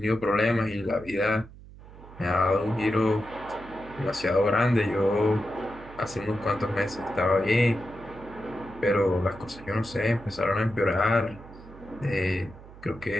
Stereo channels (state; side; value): noise; right; hum, 19 dB below the sound